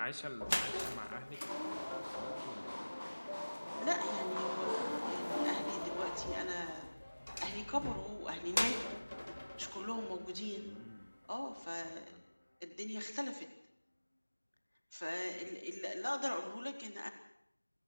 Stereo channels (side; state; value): both; inverted; correlation -1.00